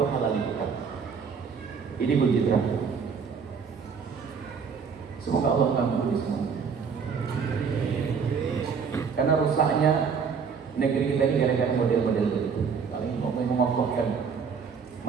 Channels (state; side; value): quieter; left; 6.0 dB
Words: halal dibuka. Ini kunci terakhir. Semoga Allah mengampuni semua. Karena rusaknya negeri kita ini gara-gara model-model begitu. Kalau ini mau mengokohkan,